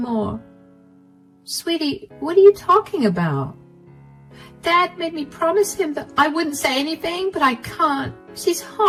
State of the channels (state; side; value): identical; both; correlation 1.00